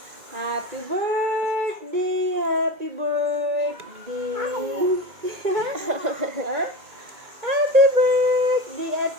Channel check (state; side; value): late; left; 2.2 ms